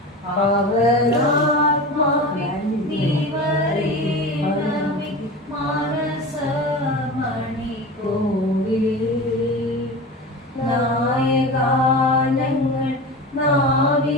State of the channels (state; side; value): normal; both; correlation 0.30